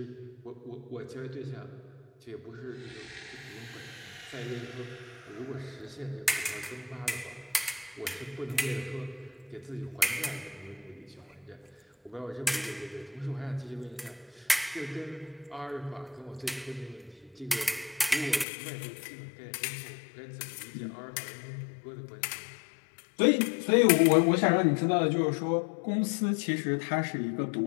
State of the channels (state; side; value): drops out; right; at 18.4 s